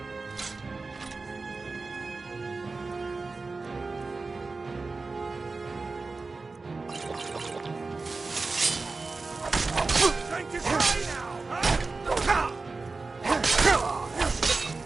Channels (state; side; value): quieter; left; 3.9 dB